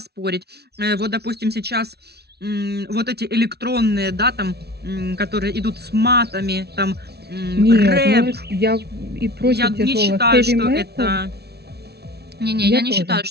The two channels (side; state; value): left; late; 0.48 ms